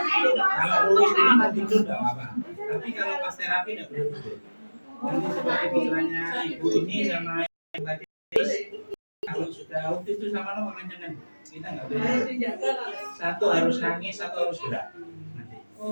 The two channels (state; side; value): inverted; both; correlation -1.00